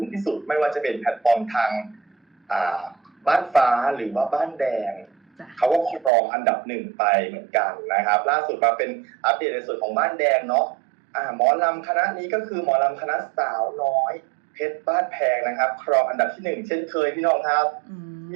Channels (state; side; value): drops out; left; at 6.1 s